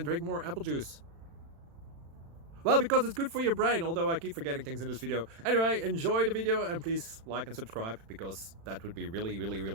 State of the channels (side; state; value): left; late; 36 ms